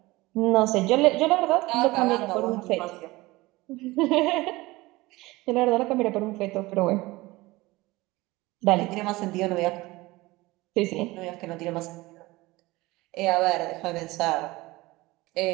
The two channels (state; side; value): quieter; left; 20.5 dB